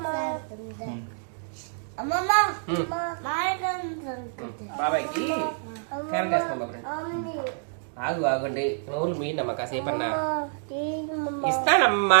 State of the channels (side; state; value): left; silent; digital silence